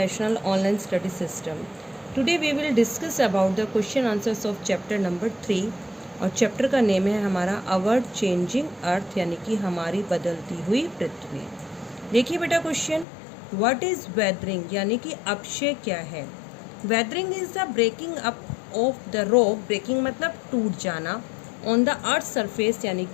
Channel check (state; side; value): drops out; right; at 13.1 s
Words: Online Study System. Today we will discuss about the question answers of chapter number 3 और chapter का name है हमारा अवर changing earth यानी कि हमारी बदलती हुई पृथ्वी। देखिए बेटा क्वेश्चन, व्हाट इज वेदरिंग यानी कि अपक्षय क्या है। Weathering is the breaking up of the rock, breaking मतलब टूट जाना, ऑन द अर्थ सरफेस यानी